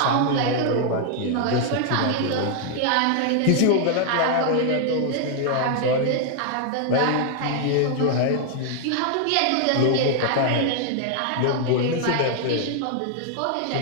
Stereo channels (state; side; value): different; both; correlation 0.00